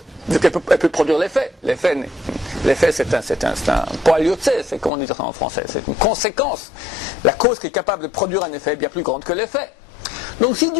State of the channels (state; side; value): drops out; right; at 4.9 s